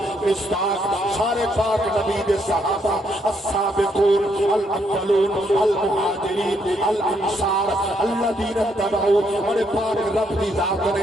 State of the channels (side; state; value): both; normal; correlation 0.74